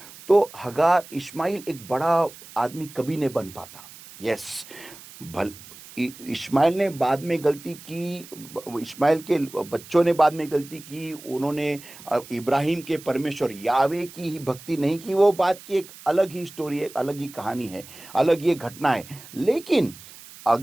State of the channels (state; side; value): noise; right; hiss, 18 dB below the sound